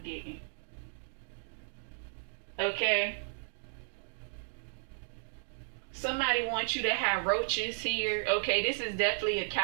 Okay? Somebody wants you to have roaches here. Okay, this is definitely a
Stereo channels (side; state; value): left; silent; digital silence